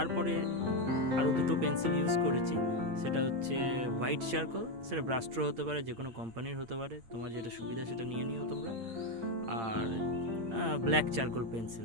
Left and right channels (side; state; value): left; late; 8.6 ms